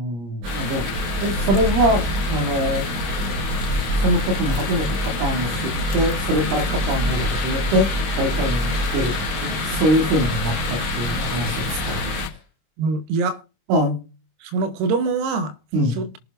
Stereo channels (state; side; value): late; left; 25 ms